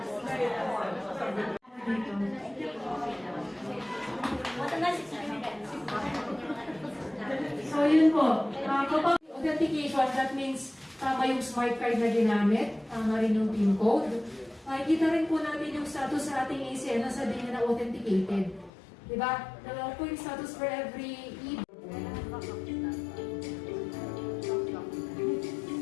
So yun po, kapag authentication, that means tama yung smart card na ginamit, tama rin yung PIN code. Kita rin po natin yung status sa ating ACN na sabihin na authenticated. Diba? Dalawa po yung status for every hindi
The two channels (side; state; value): right; drops out; at 18.7 s